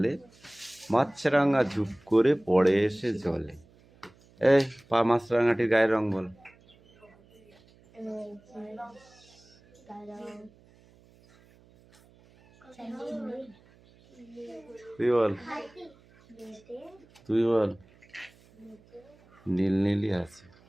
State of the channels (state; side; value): noise; right; hum, 28 dB below the sound